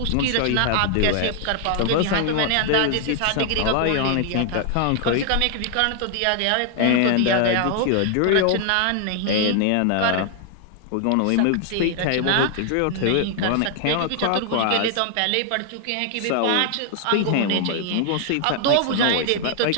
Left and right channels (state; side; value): different; both; correlation 0.00